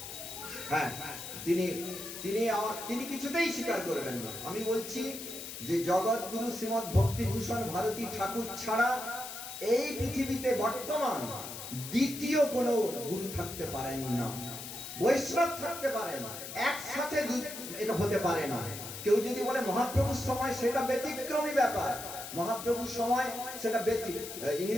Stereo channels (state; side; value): noise; left; hiss, 9 dB below the sound